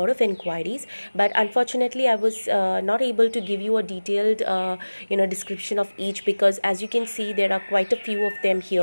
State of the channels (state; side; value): inverted; both; correlation -1.00